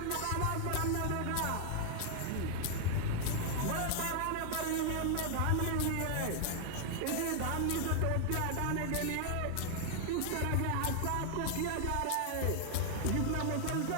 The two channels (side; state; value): both; different; correlation 0.00